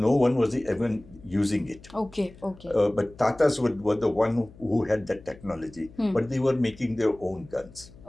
one was even using it. Okay. But Tatas were the one who had that technology, but they were making their own guns.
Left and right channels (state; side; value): noise; left; hum, 22 dB below the sound